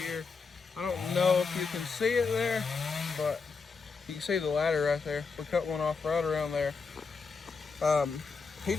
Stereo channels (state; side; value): quieter; right; 4.8 dB